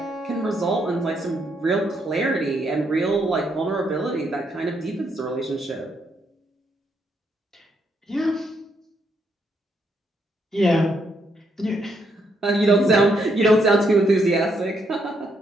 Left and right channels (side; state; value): both; normal; correlation 0.76